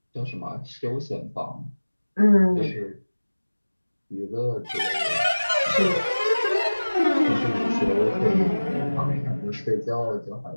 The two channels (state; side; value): inverted; both; correlation -1.00